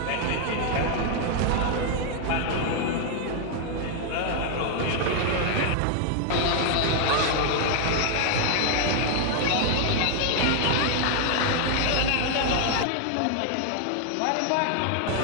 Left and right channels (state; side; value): different; both; correlation 0.00